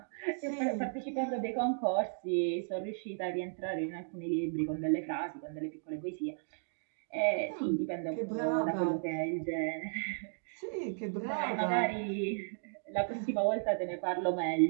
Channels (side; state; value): left; silent; digital silence